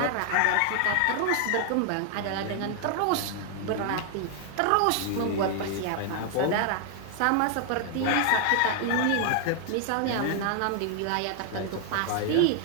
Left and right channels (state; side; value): different; both; correlation 0.00